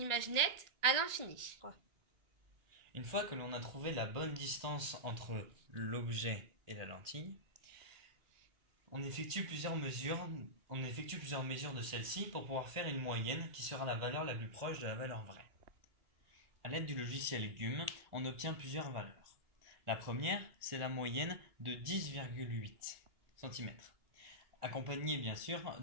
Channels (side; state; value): left; late; 1.8 ms